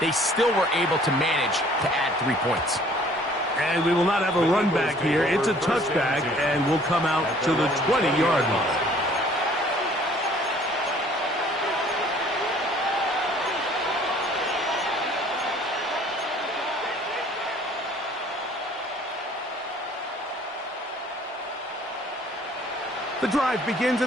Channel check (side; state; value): both; normal; correlation 0.56